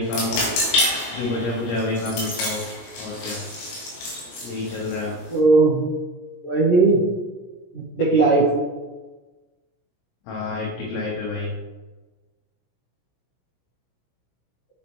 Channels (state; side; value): late; right; 17 ms